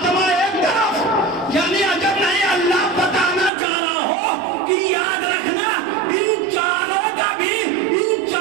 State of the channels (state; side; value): drops out; left; at 3.5 s